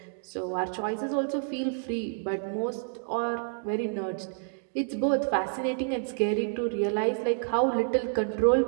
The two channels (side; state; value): left; silent; digital silence